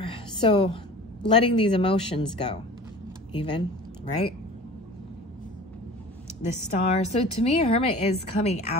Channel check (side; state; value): both; normal; correlation 0.40